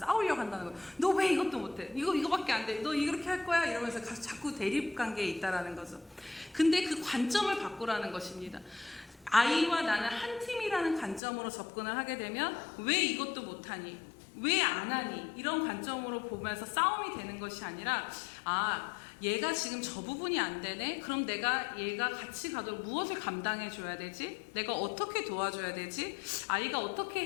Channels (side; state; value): right; drops out; at 11.2 s